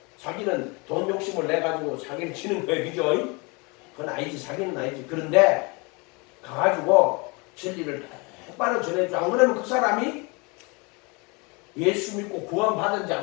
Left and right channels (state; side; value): quieter; right; 28.9 dB